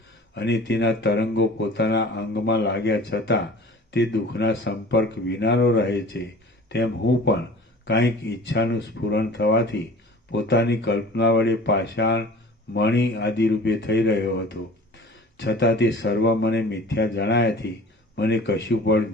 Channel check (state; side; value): normal; both; correlation 0.43